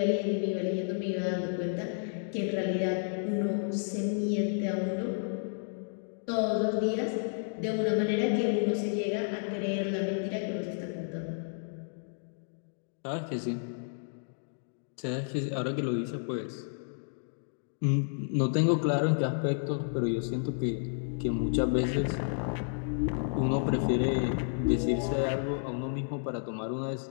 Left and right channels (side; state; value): right; silent; digital silence